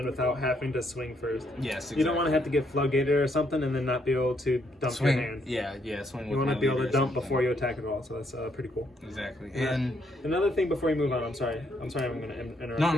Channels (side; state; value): both; normal; correlation 0.73